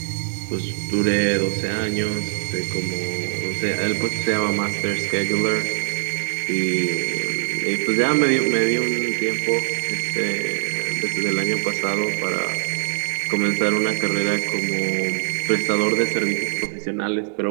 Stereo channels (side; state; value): left; silent; 58 dB below the other